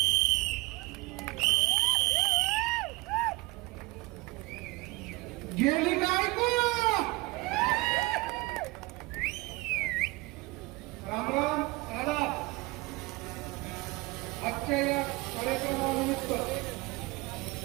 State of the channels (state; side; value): quieter; left; 23.3 dB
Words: गेली काय को राम राम दादा. आजच्या या कार्यक्रमानिमित्त